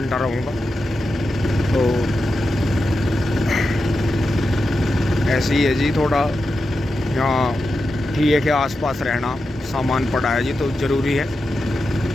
रहूँगा। तो ऐसे ही है जी, थोड़ा यहाँ ठीक के आसपास रहना, सामान पड़ा है जी तो ज़रूरी है।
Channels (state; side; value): normal; both; correlation 0.89